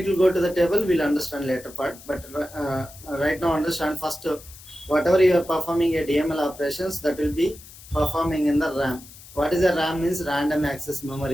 will go to the table, we'll understand later part. But right now, understand first. Whatever you are performing a DML operations, that will be performing in the RAM. What is a RAM? Means random access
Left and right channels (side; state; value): left; noise; hiss, 19 dB below the sound